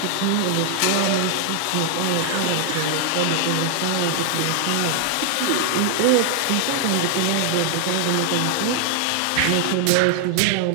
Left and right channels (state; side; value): different; both; correlation 0.00